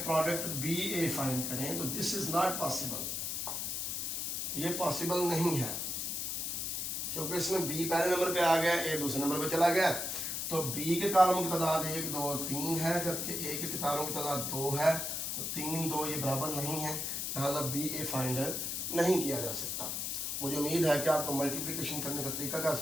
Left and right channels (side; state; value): left; noise; hiss, 2 dB below the sound